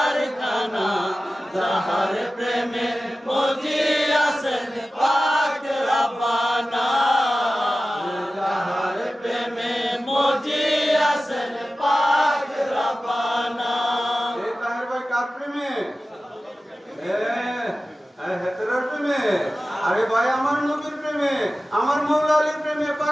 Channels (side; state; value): both; normal; correlation 0.95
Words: যাহার প্রেমে মজি আছেন পাক রব্বানা যাহার প্রেমে মজি আছেন পাক রব্বানা এ তাহের ভাই কার প্রেমে হেতেরার প্রেমে আরে ভাই আমার নবীর প্রেমে আমার মৌলা আলীর প্রেমে